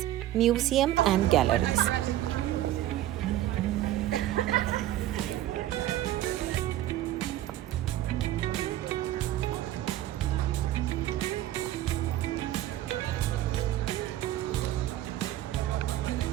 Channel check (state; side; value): quieter; left; 13.8 dB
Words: museum and galleries.